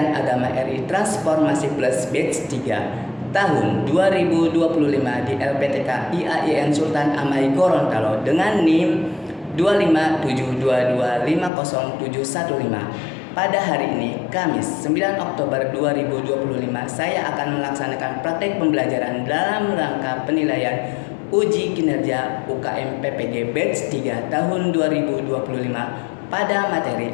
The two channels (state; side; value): drops out; right; at 11.5 s